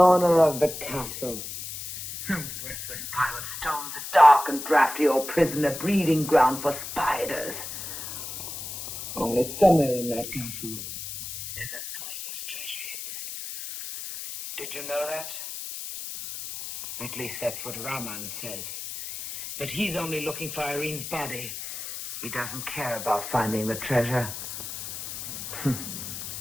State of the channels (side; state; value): left; noise; hiss, 8 dB below the sound